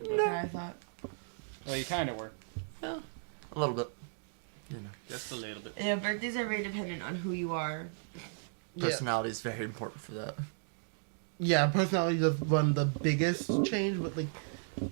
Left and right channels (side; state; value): left; silent; digital silence